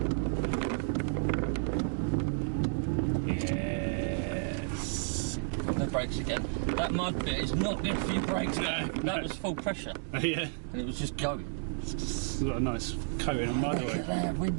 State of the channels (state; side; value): silent; left; digital silence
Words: Yes. No brakes again. That mud bit is not good for your brakes. No, that was full pressure. Yeah. And it was just going. It's got a nice coating of mud Look oil. at there,